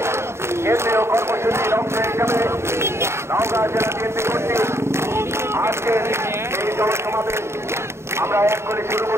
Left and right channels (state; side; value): late; left; 0.13 ms